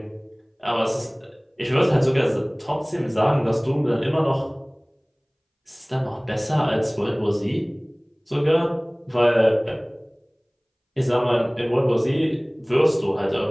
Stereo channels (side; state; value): both; identical; correlation 1.00